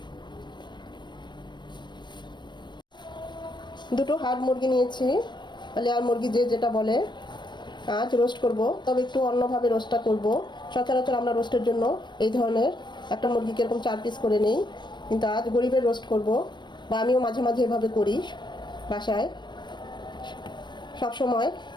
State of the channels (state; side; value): late; right; 0.22 ms